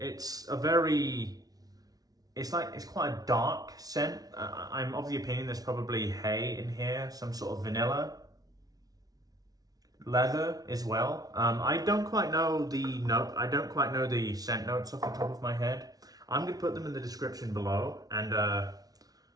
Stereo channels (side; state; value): left; late; 0.18 ms